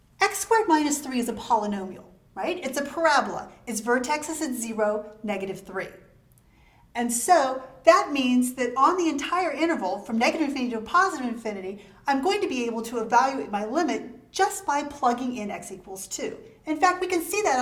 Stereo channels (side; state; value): both; identical; correlation 1.00